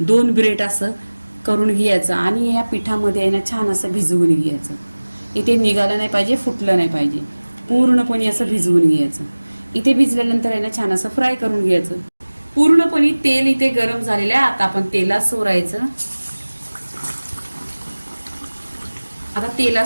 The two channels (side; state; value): both; inverted; correlation -1.00